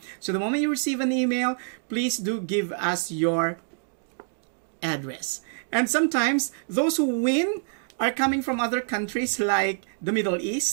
So the moment you receive an email, please do give us your address. And sometimes those who win are coming from other countries like the Middle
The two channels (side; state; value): left; silent; 61 dB below the other